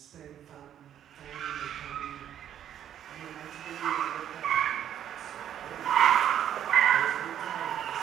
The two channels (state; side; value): quieter; left; 10.2 dB